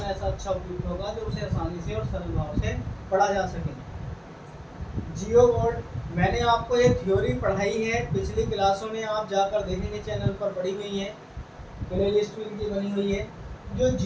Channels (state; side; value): identical; both; correlation 1.00